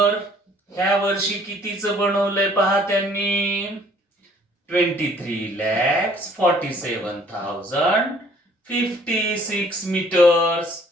ह्या वर्षी कितीचं बनवलंय पहा त्यांनी, 23,47,056 मीटर्स.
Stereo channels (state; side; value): normal; both; correlation 0.58